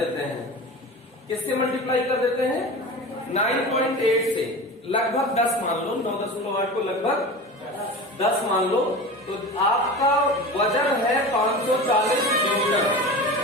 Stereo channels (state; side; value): normal; both; correlation 0.31